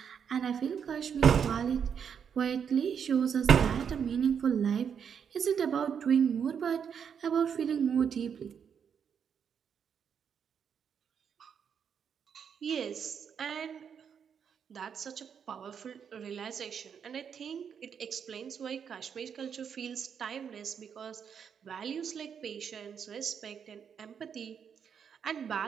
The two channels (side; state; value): left; quieter; 7.4 dB